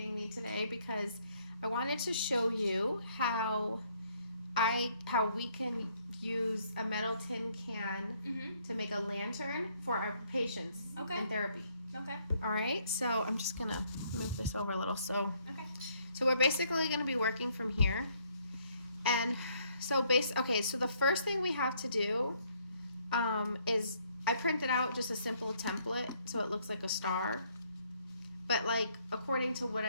me today because I wanted to show you how we can use a metal tin can to make a lantern for our patients in therapy. Okay. All right. So I'm just gonna move this over a little. So Okay. we're basically gonna be working from here, and so so the first thing we have to do is I printed out just a simple template so it looks like a star. But like according to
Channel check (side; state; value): both; inverted; correlation -0.68